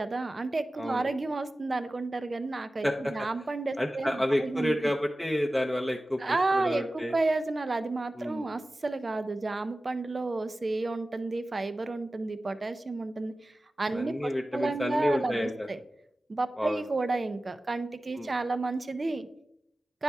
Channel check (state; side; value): normal; both; correlation 0.96